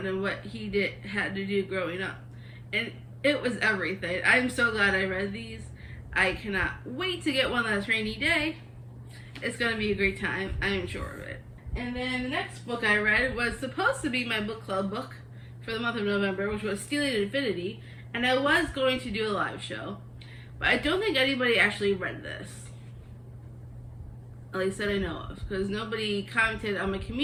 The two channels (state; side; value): identical; both; correlation 1.00